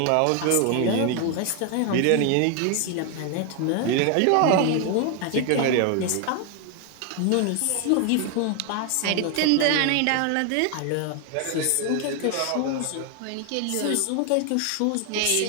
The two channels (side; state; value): both; different; correlation 0.00